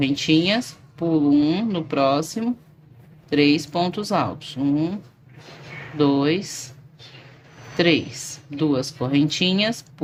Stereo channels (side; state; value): both; identical; correlation 1.00